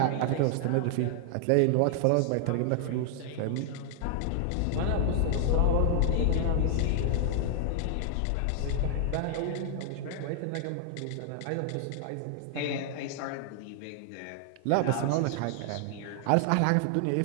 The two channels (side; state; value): both; different; correlation 0.00